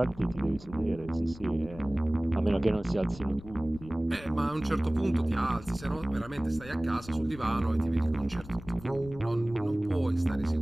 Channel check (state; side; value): noise; left; rumble, 17 dB below the sound